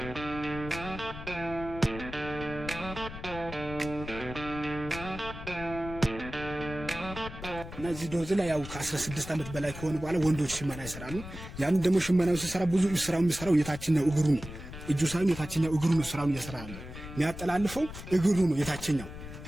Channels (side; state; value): left; noise; rumble, 11 dB below the sound